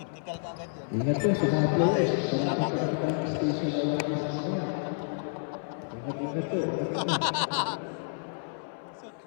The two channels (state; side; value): silent; right; 58 dB below the other